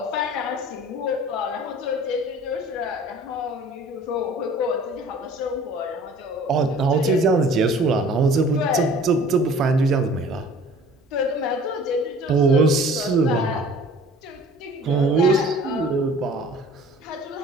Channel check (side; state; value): both; normal; correlation 0.49